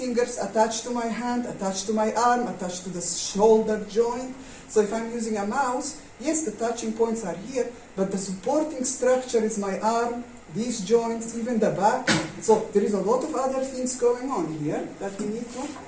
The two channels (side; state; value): both; identical; correlation 1.00